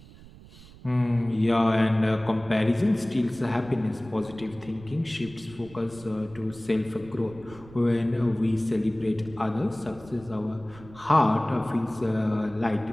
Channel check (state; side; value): noise; right; rumble, 20 dB below the sound